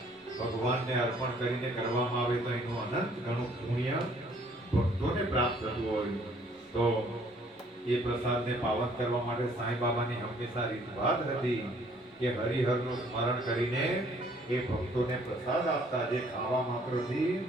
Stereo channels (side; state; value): both; normal; correlation 0.61